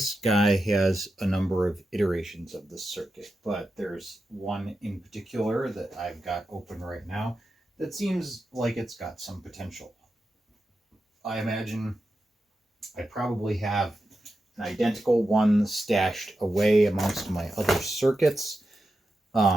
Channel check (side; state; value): both; normal; correlation 0.89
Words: guy has a number of iterations of the circuit, but there's one in particular that I've got open right now that seems like it's got some potential. I imagine I probably have an identical one stashed away amongst my other circuits.